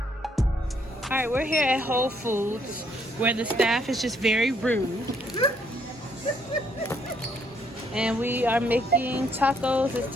All right, we're here at Whole Foods where the staff is just very rude. And we are making tacos. It's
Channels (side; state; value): both; normal; correlation 0.69